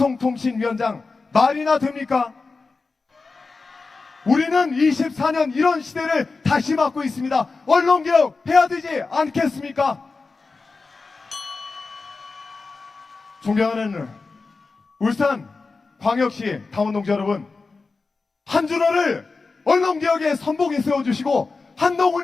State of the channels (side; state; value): right; quieter; 4.1 dB